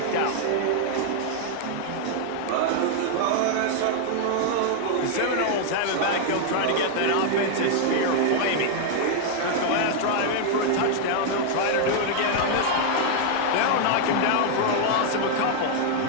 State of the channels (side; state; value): both; different; correlation 0.00